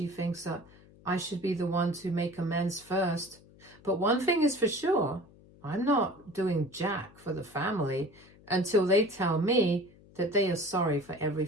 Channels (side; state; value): left; noise; hum, 25 dB below the sound